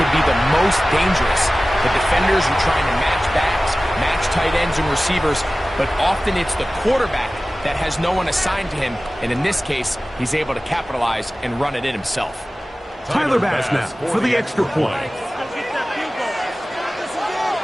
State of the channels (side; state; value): both; normal; correlation 0.97